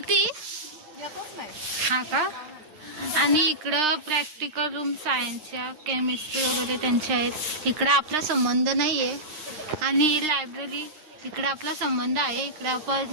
येतच नाही. हा का? आणि इकडं प्रॅक्टिकल रूम सायन्सच्या केमिस्ट्री वगैरे त्यांच्या आहेत. इकडं आपला संबंध नाही आहे. आणि लायब्ररी इकडं आपला संबंध आहे. इकडं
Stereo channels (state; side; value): late; left; 9.8 ms